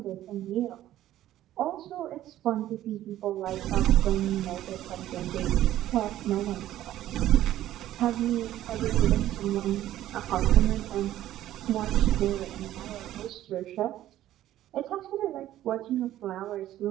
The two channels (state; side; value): quieter; left; 13.3 dB